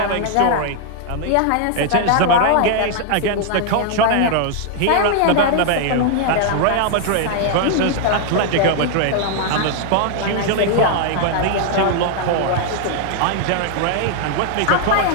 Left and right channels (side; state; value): both; different; correlation 0.00